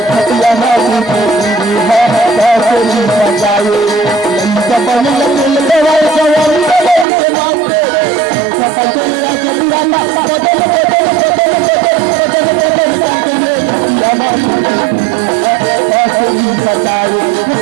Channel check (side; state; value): left; drops out; at 7.1 s